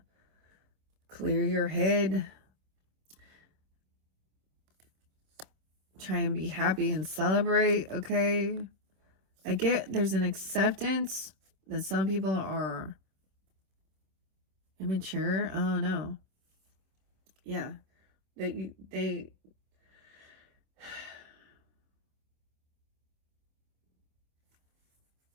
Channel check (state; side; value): late; left; 26 ms